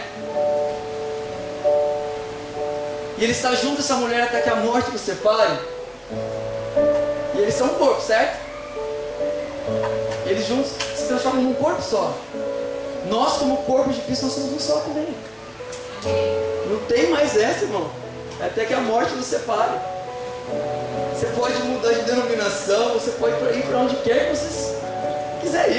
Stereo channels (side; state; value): both; identical; correlation 1.00